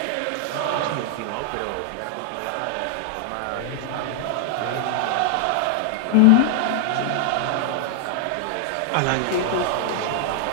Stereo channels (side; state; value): both; different; correlation 0.00